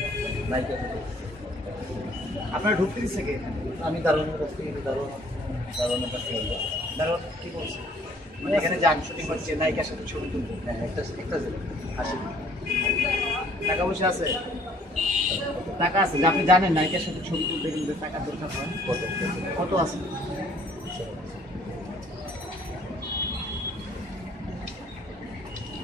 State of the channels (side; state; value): both; normal; correlation 0.59